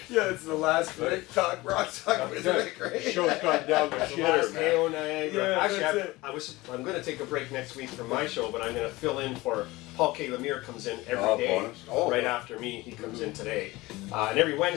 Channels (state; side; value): quieter; right; 20.3 dB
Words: Yeah, it's the last minute talk, rock talk with Rick, right? Show's gone down the The last shitter, man. Heyo Niagara. Yeah, Actually, that's it. I'm going to take a break next week from my show, but I'm going to fill in for Paul K. Lemire. Comes in every Oh, day, bonus. Oh. right after me. He comes in today, and every